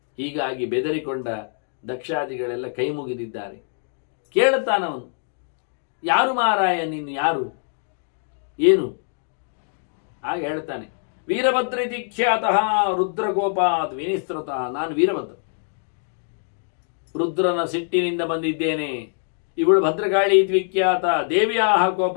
ಹೀಗಾಗಿ ಬೆದರಿಕೊಂಡ ದಕ್ಷಾದಿಗಳೆಲ್ಲ ಕೈ ಮುಗಿದಿದ್ದಾರೆ. ಕೇಳುತ್ತಾನವನು, ಯಾರು ಮಾರಾಯ ನೀನು, ಯಾರು, ಏನು? ಆಗ ಹೇಳ್ತಾನೆ, ವೀರಭದ್ರಿತಿ ಖ್ಯಾತಃ ರುದ್ರಗೋಪಾತ್ ವಿನಿಸೃತ. ನಾನು ವೀರಭದ್ರ, ರುದ್ರನ ಸಿಟ್ಟಿನಿಂದ ಬಂದಿದ್ದೇನೆ. ಇವಳು ಭದ್ರಕಾಳಿ ವಿಖ್ಯಾತ, ದೇವಿಯ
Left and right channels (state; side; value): silent; right; digital silence